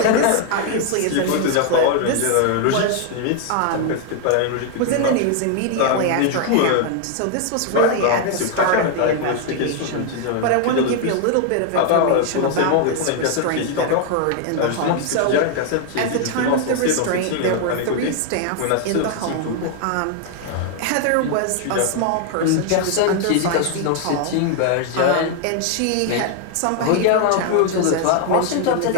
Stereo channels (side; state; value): both; different; correlation 0.00